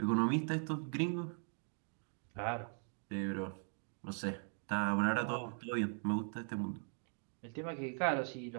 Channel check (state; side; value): silent; left; 51 dB below the other